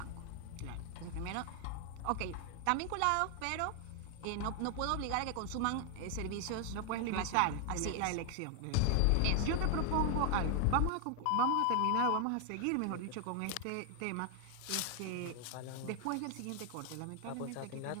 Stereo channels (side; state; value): both; different; correlation 0.00